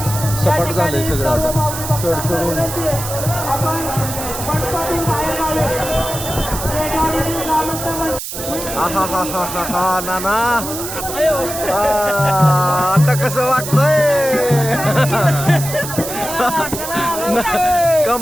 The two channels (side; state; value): right; noise; hiss, 7 dB below the sound